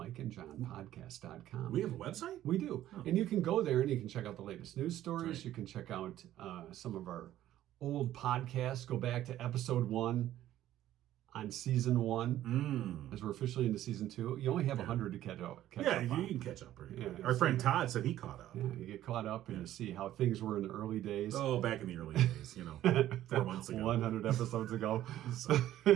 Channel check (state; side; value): quieter; left; 13.1 dB